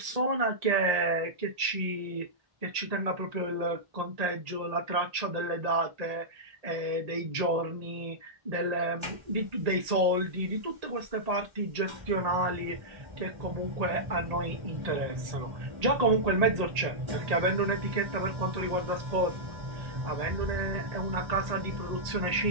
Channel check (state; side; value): late; left; 1.8 ms